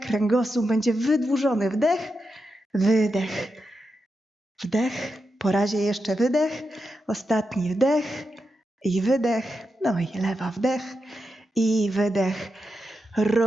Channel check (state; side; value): normal; both; correlation 0.87